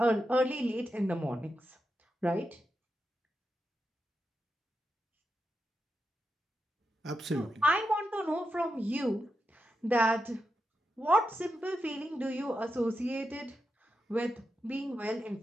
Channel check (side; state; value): both; normal; correlation 0.87